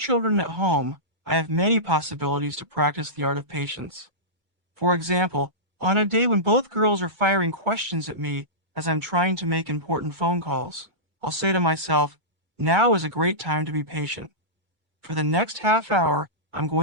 at home, I have many possibilities to practice the art of patience. For example, on a day when both girls are firing questions at me as I'm trying to make important phone calls, I'll say to myself, "Now is a great time to be patient." For the next half hour, I'm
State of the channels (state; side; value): late; left; 2.3 ms